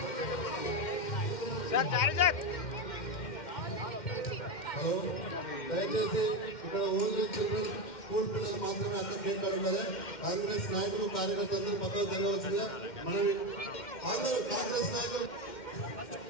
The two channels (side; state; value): right; late; 2.1 ms